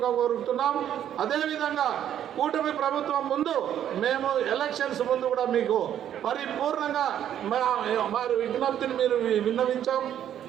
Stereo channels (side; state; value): left; quieter; 10.3 dB